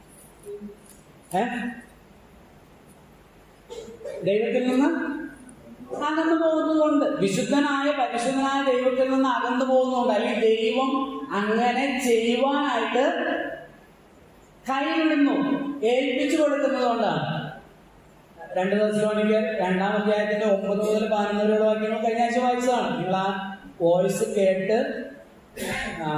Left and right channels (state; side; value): identical; both; correlation 1.00